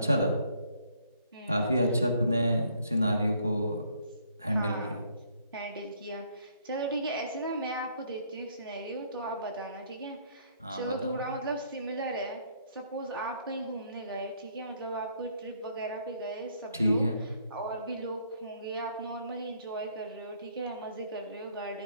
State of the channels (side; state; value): both; inverted; correlation -0.66